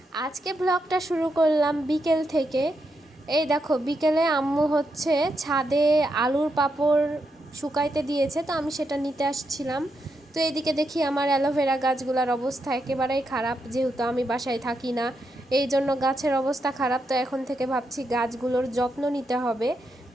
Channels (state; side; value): normal; both; correlation 0.83